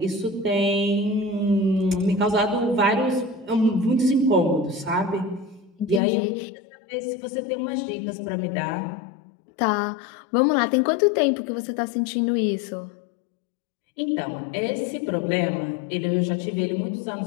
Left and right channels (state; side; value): drops out; right; at 6.0 s